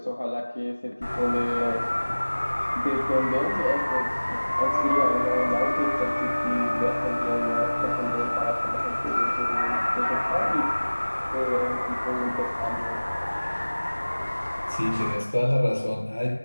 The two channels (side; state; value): both; inverted; correlation -1.00